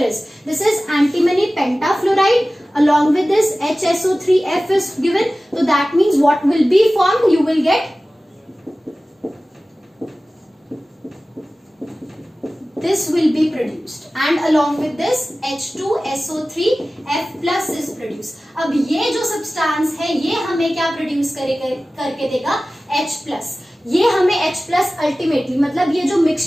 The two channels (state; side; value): normal; both; correlation 0.97